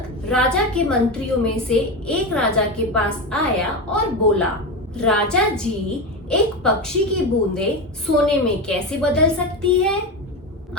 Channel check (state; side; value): normal; both; correlation 0.18